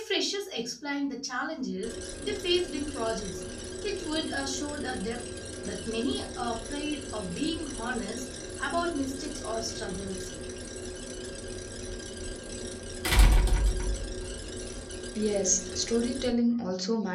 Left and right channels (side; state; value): both; identical; correlation 1.00